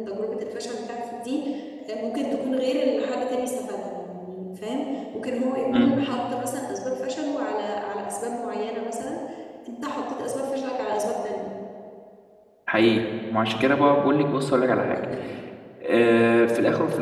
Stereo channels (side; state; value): both; identical; correlation 1.00